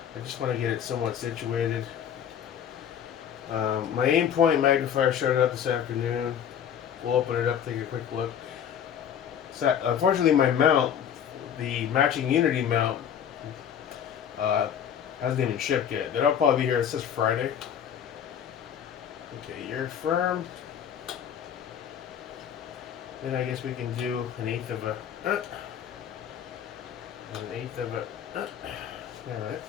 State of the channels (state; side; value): quieter; right; 8.8 dB